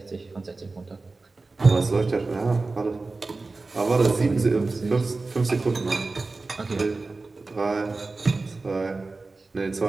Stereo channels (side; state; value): left; quieter; 3.6 dB